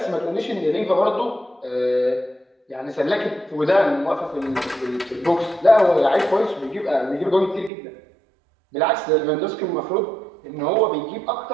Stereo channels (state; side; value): drops out; left; at 7.7 s